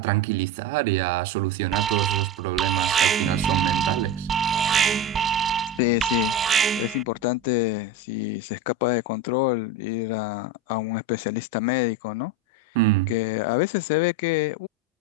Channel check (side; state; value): both; normal; correlation 0.21